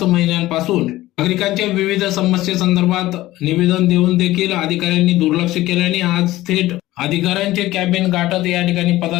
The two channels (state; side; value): quieter; right; 16.7 dB